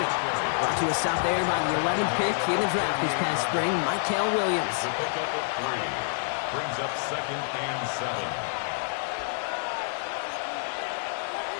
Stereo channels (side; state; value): right; silent; 60 dB below the other